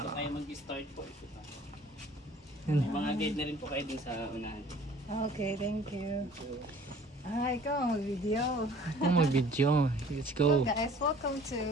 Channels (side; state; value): both; normal; correlation 0.51